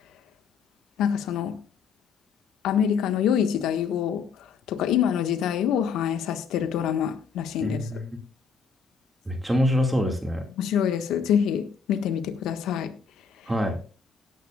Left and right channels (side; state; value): right; quieter; 5.9 dB